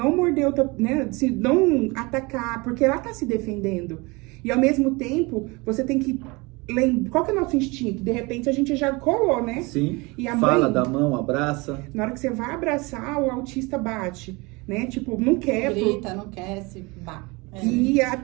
morder outra, né? Se não atacar, porque ela tá se defendendo. E ao mesmo tempo, você tem que lembrar. Qual que é o nosso instinto? De repente a gente já colou, né? Sim. E a fala mãe, da mão, abraça. Na hora que você vai abraçar, o autista bate, né? Tipo, não quer. Grita, não quer, se bate. E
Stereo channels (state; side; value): quieter; left; 25.6 dB